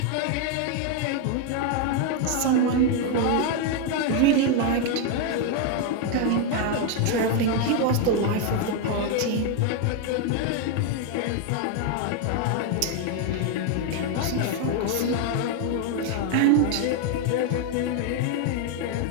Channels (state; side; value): different; both; correlation 0.01